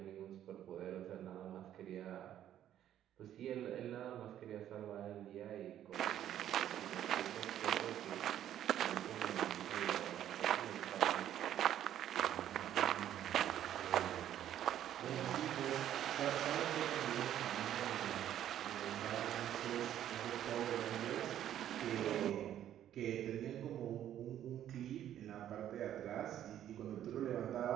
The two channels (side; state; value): left; quieter; 11.2 dB